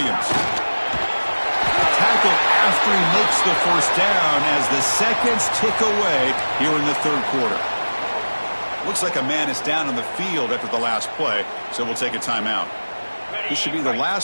Tackle after he makes the first down as the seconds tick away here in the third quarter. Looks like a man is down on the field after the last play, so we'll take a timeout. This should be the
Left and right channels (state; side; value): inverted; both; correlation -1.00